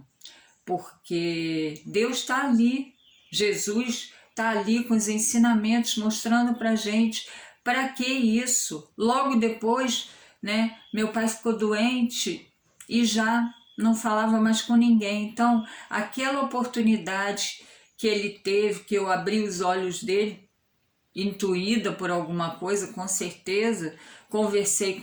porque Deus está ali, Jesus está ali com os ensinamentos, mostrando para a gente para que isso. Logo depois, né, meu pai ficou doente e já não falava mais com ninguém. Então, aquela oportunidade que ele teve, que eu abri os olhos dele, intuída por alguma coisa, com certeza, conversei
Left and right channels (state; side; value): identical; both; correlation 1.00